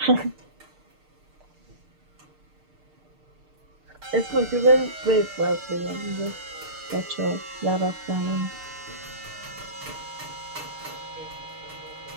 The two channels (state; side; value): late; left; 6.6 ms